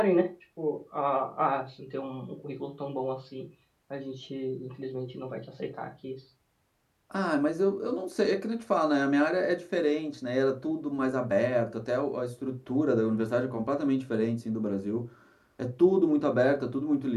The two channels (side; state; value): both; identical; correlation 1.00